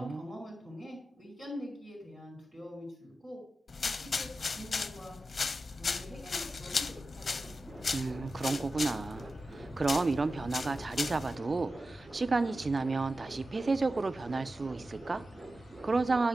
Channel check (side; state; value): both; normal; correlation 0.93